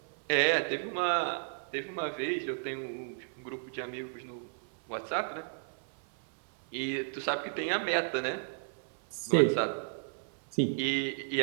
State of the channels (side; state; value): left; silent; 56 dB below the other